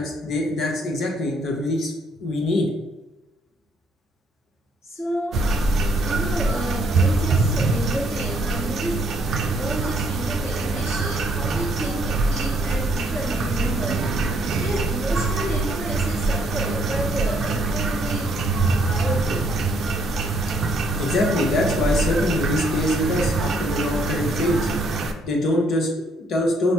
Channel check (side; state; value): both; normal; correlation 0.68